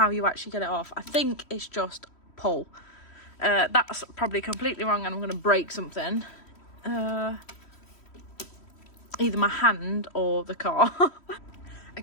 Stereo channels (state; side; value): late; right; 3.1 ms